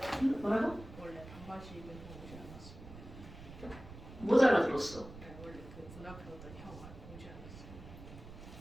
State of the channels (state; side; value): noise; right; rumble, 14 dB below the sound